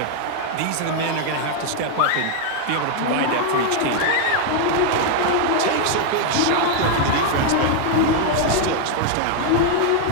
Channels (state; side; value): different; both; correlation 0.00